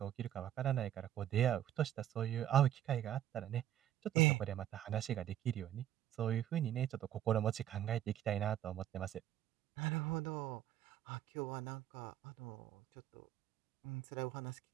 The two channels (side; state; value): left; quieter; 11.7 dB